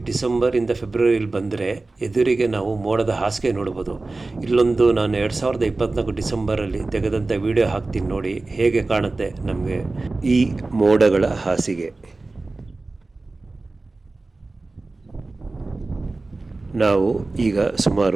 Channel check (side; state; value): left; quieter; 3.3 dB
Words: ಡಿಸೆಂಬರಿಂದ ಫೆಬ್ರವರಿಲಿ ಬಂದರೆ ಎದುರಿಗೆ ನಾವು ಮೋಡದ ಹಾಸಿಗೆ ನೋಡ್ಬೋದು. ಇಲ್ಲೊಂದು ನಾನು 2024 ಡಿಸೆಂಬರಲ್ಲಿ ತೆಗೆದಂಥ ವಿಡಿಯೋ ಹಾಕ್ತೀನಿ ನೋಡಿ, ಹೇಗೆ ಕಾಣುತ್ತೆ ನಮಗೆ ಈ ಮೋಡಗಳ ಹಾಸಿಗೆ. ನಾವು ಈಗ